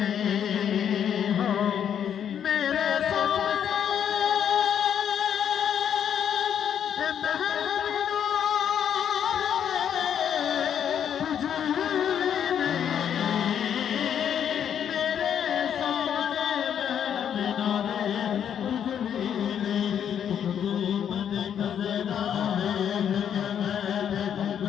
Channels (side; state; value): right; quieter; 8.9 dB